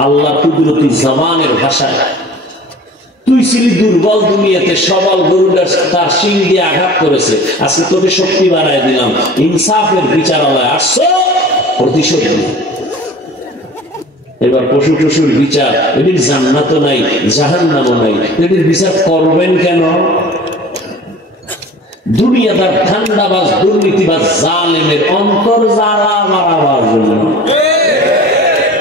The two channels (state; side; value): normal; both; correlation 0.42